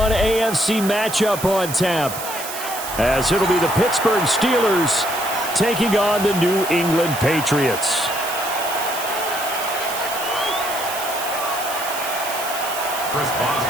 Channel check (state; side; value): noise; right; hiss, 8 dB below the sound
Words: AFC matchup on tap, as it'll be the Pittsburgh Steelers taking on the New England Patriots. Chris